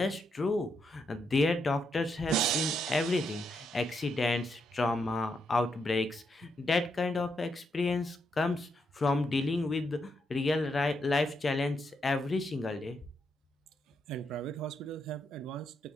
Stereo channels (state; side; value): normal; both; correlation 0.80